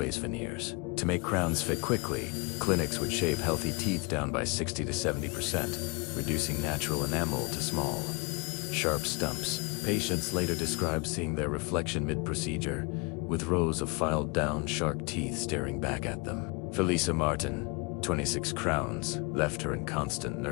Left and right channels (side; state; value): right; quieter; 30.0 dB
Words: veneers. To make crowns fit quickly, clinics would shave healthy teeth down by 60 to 70%, reducing natural enamel to small, sharp stumps. Patients later described seeing their reflection mid-procedure, with rows of filed-down shark teeth staring back at them. Felisa Martin, 26 crowns, left her in constant